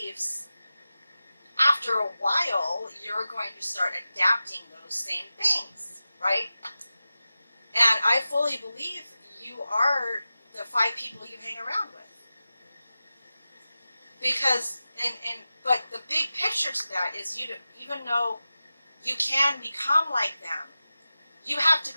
after a while, you're going to start adapting those same things, right? And I fully believe you are the 5 people you hang around with. Because, but the big picture to that is even though you can become like them, you have to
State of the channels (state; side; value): inverted; both; correlation -0.94